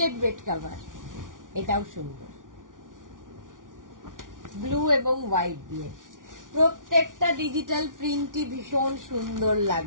বেড কভার, এটাও সুন্দর, ব্লু এবং হোয়াইট দিয়ে। প্রত্যেকটা ডিজিটাল প্রিন্টই ভীষণ সুন্দর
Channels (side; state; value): left; late; 0.88 ms